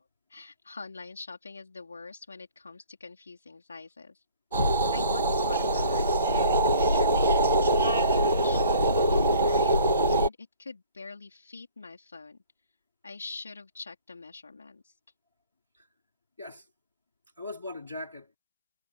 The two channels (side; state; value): both; inverted; correlation -0.50